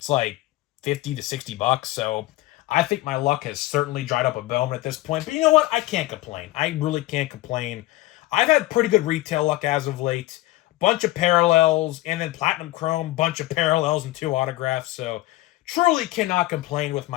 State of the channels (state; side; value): quieter; right; 18.0 dB